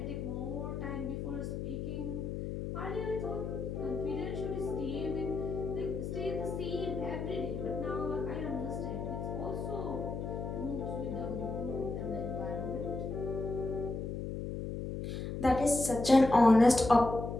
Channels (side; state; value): left; noise; hum, 4 dB below the sound